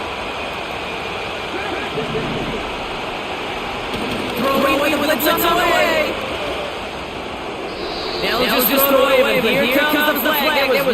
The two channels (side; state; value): both; identical; correlation 1.00